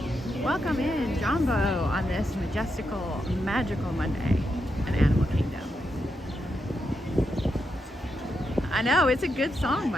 Welcome in, Jambo, on this majestical, magical Monday in Animal Kingdom. I know, it's a good song,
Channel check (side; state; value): both; normal; correlation 0.84